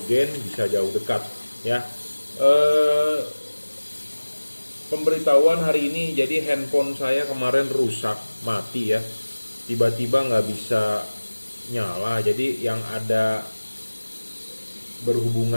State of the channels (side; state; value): both; inverted; correlation -1.00